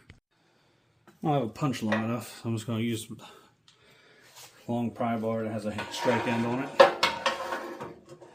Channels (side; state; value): both; identical; correlation 1.00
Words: don't have a punch long enough, so I'm just going to use a long pry bar that has a strike end on it.